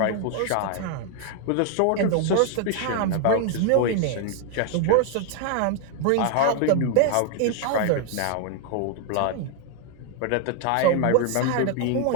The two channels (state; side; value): different; both; correlation 0.00